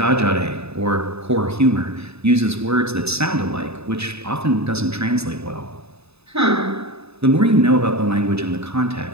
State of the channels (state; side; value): late; left; 0.79 ms